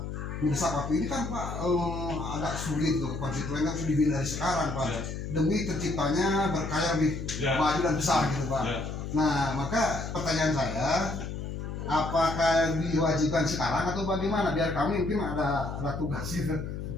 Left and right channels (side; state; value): left; noise; hum, 6 dB below the sound